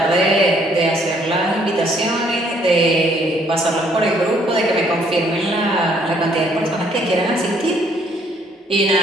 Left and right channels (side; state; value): both; normal; correlation 0.65